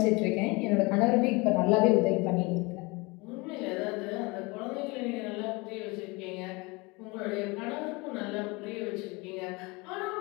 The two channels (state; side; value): quieter; right; 25.9 dB